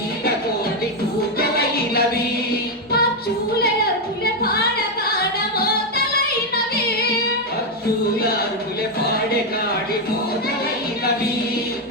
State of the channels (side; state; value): both; normal; correlation 0.04